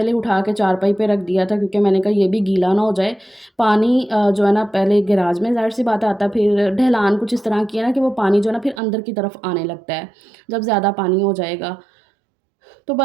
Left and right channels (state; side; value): drops out; left; at 8.8 s